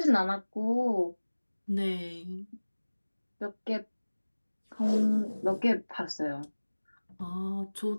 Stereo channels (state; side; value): inverted; both; correlation -1.00